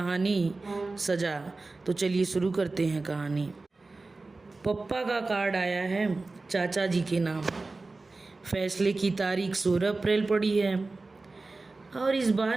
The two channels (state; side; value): quieter; left; 3.5 dB